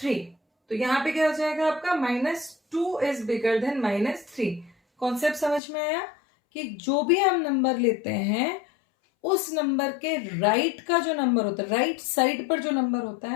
तो यहाँ पे क्या हो जाएगा आपका, minus 2 is bigger than minus 3. Concept समझ में आया कि जो भी हम नंबर लेते हैं उस नंबर के राइट का जो नंबर होता है, राइट साइड पर जो नंबर होता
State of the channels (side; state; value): right; drops out; at 5.6 s